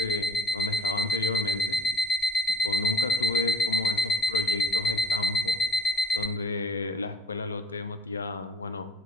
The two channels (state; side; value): normal; both; correlation 0.49